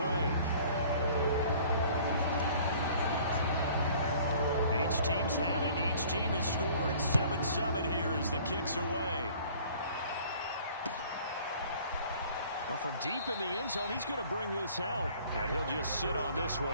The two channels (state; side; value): inverted; both; correlation -0.52